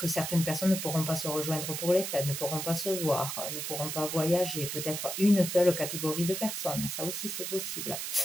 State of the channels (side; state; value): right; noise; hiss, 4 dB below the sound